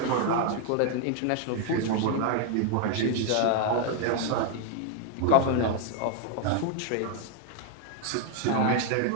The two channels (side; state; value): both; different; correlation 0.00